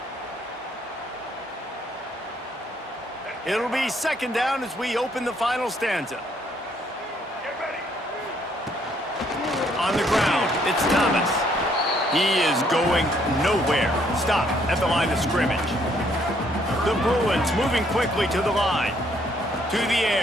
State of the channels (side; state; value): both; normal; correlation 0.68